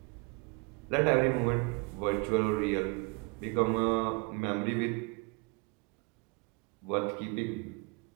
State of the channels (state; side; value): quieter; left; 31.2 dB